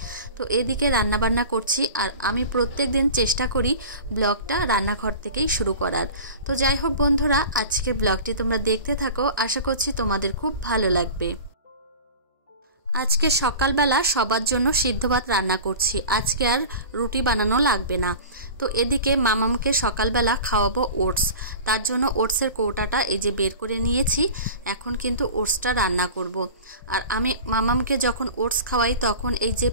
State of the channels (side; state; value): both; inverted; correlation -0.36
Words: তো এদিকে রান্নাবান্না করছি, আর আমি প্রত্যেক দিন চেষ্টা করি ব্লগটা রান্নাঘর থেকেই শুরু করার। তো যাই হোক বন্ধুরা, আজকের ব্লগটি তোমরা দেখতে থাকো, আশা করছি তোমাদের খুব ভালো লাগবে। আজকে সকালবেলা সবার জন্য সিদ্ধ ভাত রান্না করছি, আজকে আর রুটি বানানো লাগবে না। তো এদিকে মামামকে সকালবেলা খাওয়াবো ওটস, তার জন্য ওটসের কৌটাটা এই যে বের করে নিয়েছি। এখন কিন্তু ওটসটা রান্না করব। আর আমি মামামকে যখন ওটস খাওয়াই তখন এই যে